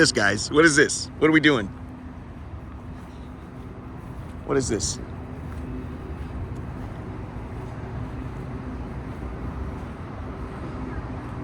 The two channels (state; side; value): identical; both; correlation 1.00